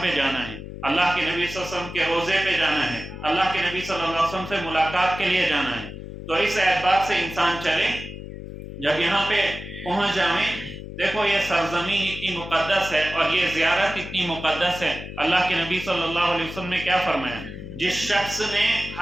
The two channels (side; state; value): left; noise; hum, 11 dB below the sound